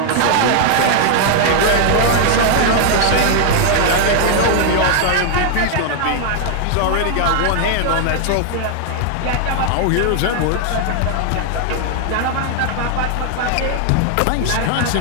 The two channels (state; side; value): different; both; correlation 0.00